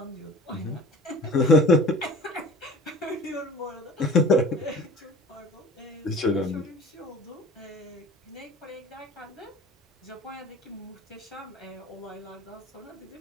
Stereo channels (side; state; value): both; normal; correlation 0.43